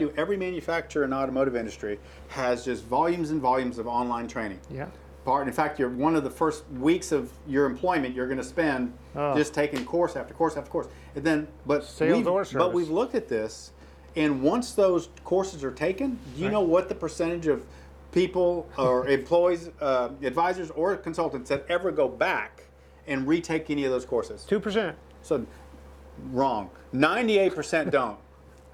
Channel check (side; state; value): both; identical; correlation 1.00